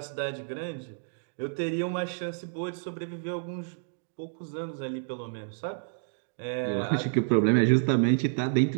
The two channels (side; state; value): left; silent; digital silence